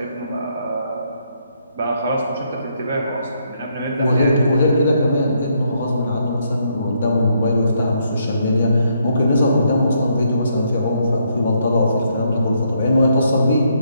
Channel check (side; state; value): both; inverted; correlation -0.74